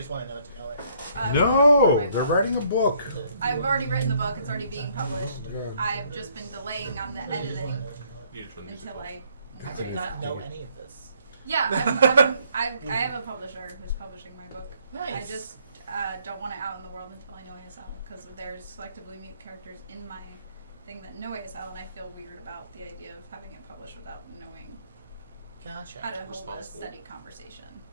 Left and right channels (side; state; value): both; inverted; correlation -0.66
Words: want to know it? No, they're writing a book. I've already written the book. It's already being published. I've just been delaying on the editing until I did not know any of this. Yeah, I have a publisher who's publishing my book. Nice. I just don't want it out in the world until I know ASL because there's selectively mute characters in my thing that know ASL, and I feel weird about the idea of having it published without knowing Gotcha. how to hold a steady conversation.